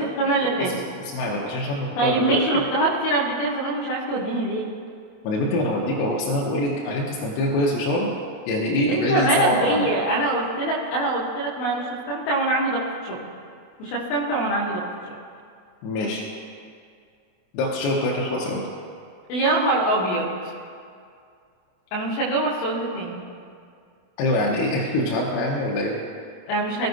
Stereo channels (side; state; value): right; late; 28 ms